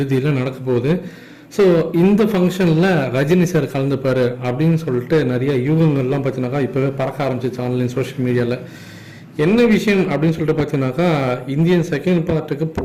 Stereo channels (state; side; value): identical; both; correlation 1.00